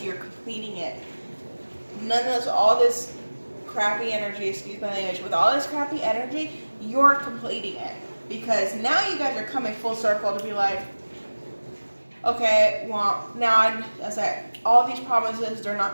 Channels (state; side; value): inverted; both; correlation -1.00